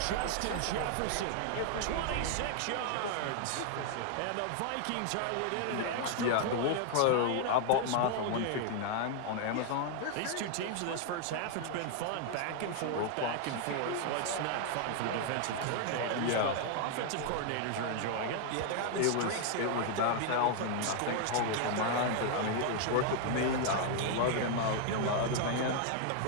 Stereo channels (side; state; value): both; different; correlation 0.00